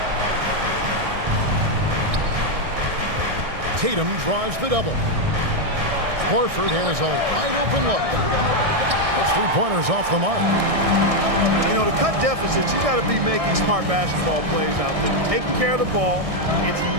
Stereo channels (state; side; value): late; left; 1.6 ms